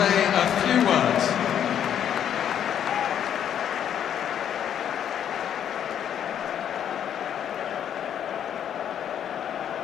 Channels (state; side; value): quieter; right; 9.4 dB